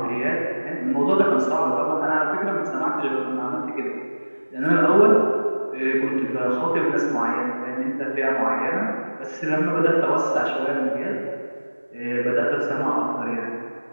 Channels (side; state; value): both; inverted; correlation -1.00